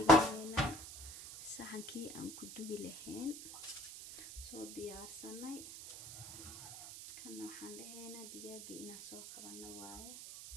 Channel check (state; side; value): noise; right; hiss, 11 dB below the sound